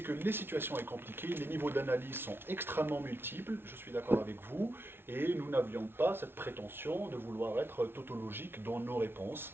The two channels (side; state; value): left; late; 0.11 ms